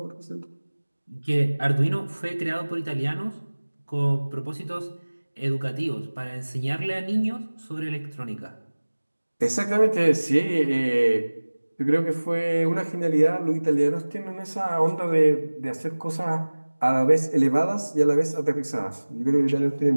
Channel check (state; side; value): inverted; both; correlation -1.00